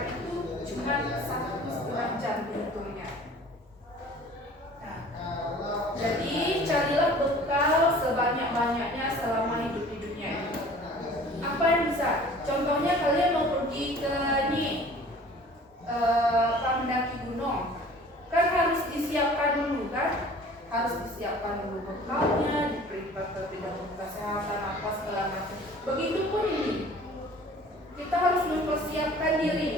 itu cuma 1,5 jam dihitungnya. Nah, jadi carilah bekal sebanyak-banyaknya selama hidup di dunia ini. Apa yang bisa? Contohnya kalian mau pergi ke mendaki gunung, kan harus disiapkan dulu kan? Harus disiapkan dulu bekalnya, diperiksa kesehatan apa segala macam. Begitupun ini, kita harus mempersiapkan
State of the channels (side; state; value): both; normal; correlation 0.47